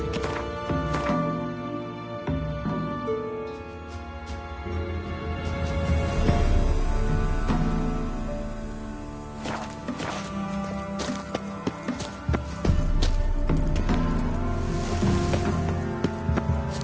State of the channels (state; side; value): identical; both; correlation 1.00